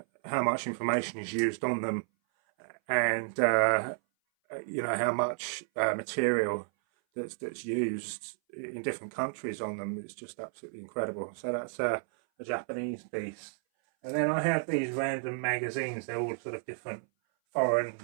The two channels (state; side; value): silent; left; 57 dB below the other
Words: how much information is used on them, and you know how much material that's used in different countries on them. It's just absolutely incredible. So that's a Japanese piece. And then I have these random magazines. They're all sort of different foreign